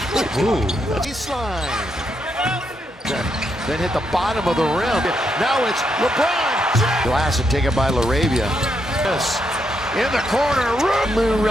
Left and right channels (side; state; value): both; normal; correlation 0.79